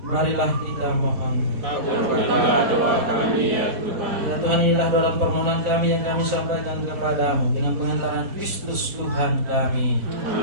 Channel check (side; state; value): left; late; 4.0 ms